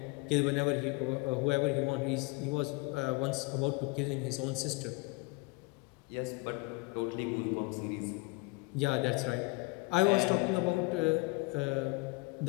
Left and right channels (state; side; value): quieter; right; 26.0 dB